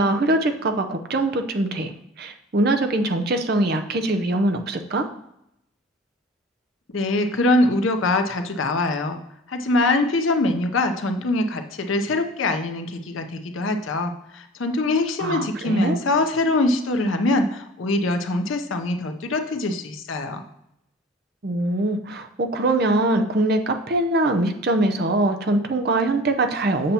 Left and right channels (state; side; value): normal; both; correlation 0.42